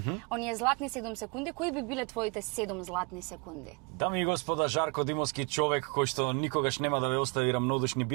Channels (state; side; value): quieter; left; 32.5 dB